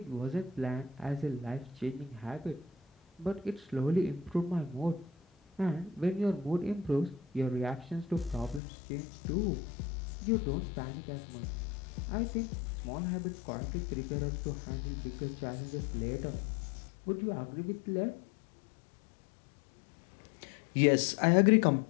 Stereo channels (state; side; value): drops out; right; at 8.6 s